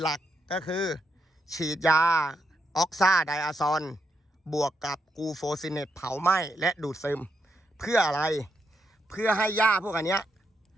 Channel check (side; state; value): both; normal; correlation 0.81